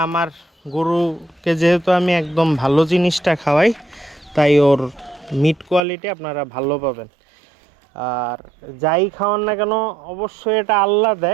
আমার গরুকে যেহেতু আমি একদম ভালো জিনিসটা খাওয়াই, তাই ওর মিট কোয়ালিটি আপনারা ভালো পাবেন। আর যাই খাওয়ান না কেন অবশ্যই এটা আল্লাহ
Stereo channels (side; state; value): left; drops out; at 5.8 s